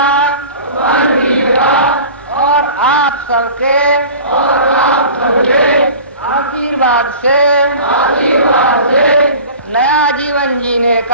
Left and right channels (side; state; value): both; inverted; correlation -0.40